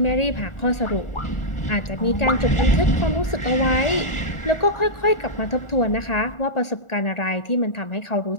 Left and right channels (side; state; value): right; late; 1.4 ms